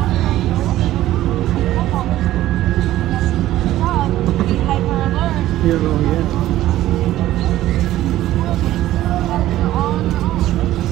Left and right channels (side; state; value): left; quieter; 14.5 dB